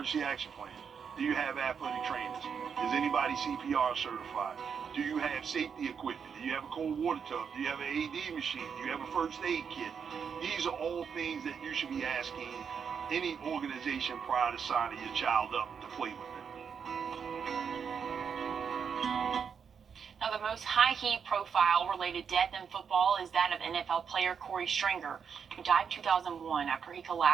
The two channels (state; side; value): quieter; left; 6.7 dB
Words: action plan? Do you have athletic trainers? Is anybody CPR certified? Do you have safety equipment? Do you have a cold water tub? Do you have an AD machine? Do you have a first aid kit? These are all things that you should be asking any organization prior to signing your child up to play with it. Now, the most high-heat profile-related death in football is that of NFL player Corey Stringer, who died in 2001 after he